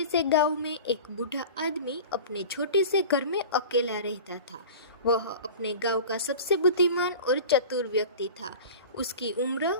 से गांव में एक बूढ़ा आदमी अपने छोटे से घर में अकेला रहता था। वह अपने गांव का सबसे बुद्धिमान और चतुर व्यक्ति था। उसकी उम्र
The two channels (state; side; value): inverted; both; correlation -0.36